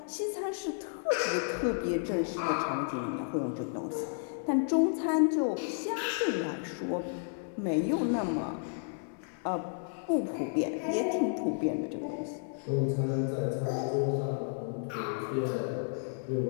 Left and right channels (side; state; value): right; silent; 56 dB below the other